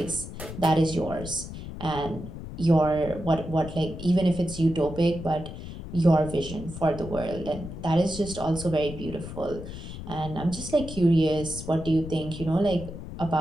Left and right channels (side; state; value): left; noise; rumble, 10 dB below the sound